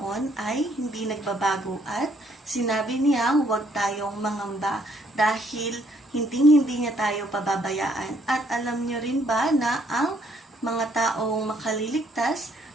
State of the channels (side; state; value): both; normal; correlation 0.67